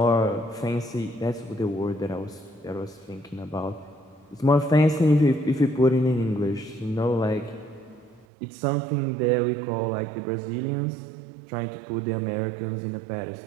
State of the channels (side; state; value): left; drops out; at 8.2 s